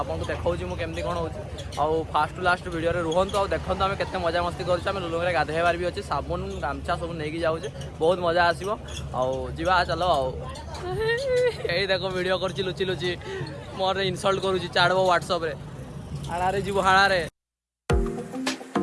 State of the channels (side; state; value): both; identical; correlation 1.00